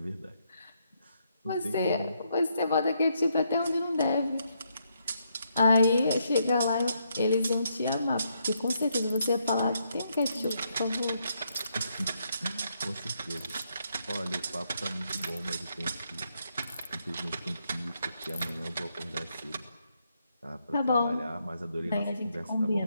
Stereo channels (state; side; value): inverted; both; correlation -0.76